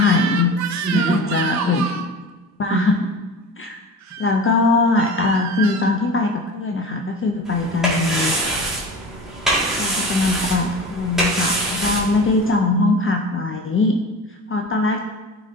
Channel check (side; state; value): both; normal; correlation 0.34